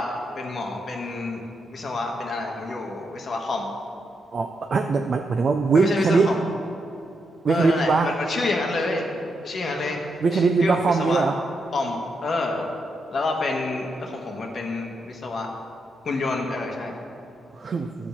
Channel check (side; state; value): both; normal; correlation 0.82